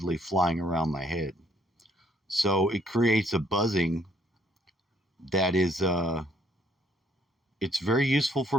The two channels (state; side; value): normal; both; correlation 0.66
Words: flying around my head. So it creates a buzzing that is it's very useful for